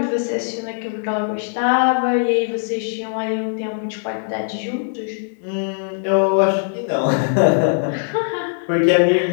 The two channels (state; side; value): silent; right; digital silence